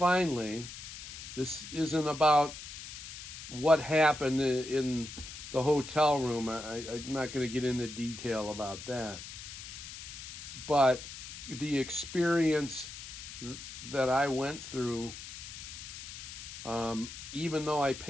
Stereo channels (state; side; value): noise; left; hiss, 11 dB below the sound